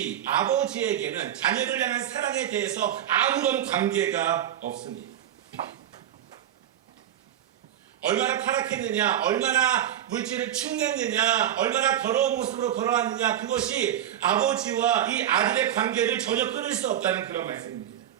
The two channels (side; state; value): left; quieter; 11.1 dB